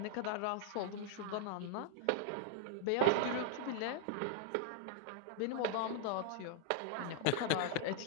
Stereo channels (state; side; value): different; both; correlation 0.00